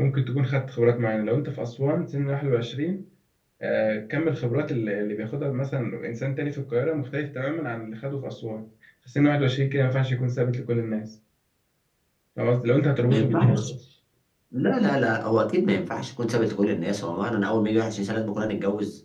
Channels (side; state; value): both; identical; correlation 1.00